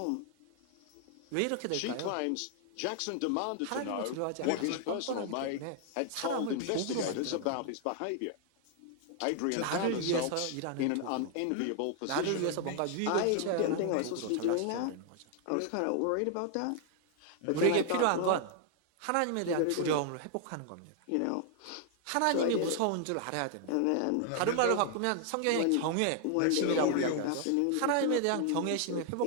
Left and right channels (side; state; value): both; different; correlation 0.00